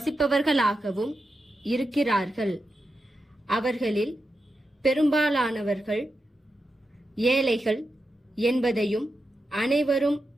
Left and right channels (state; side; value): normal; both; correlation 0.88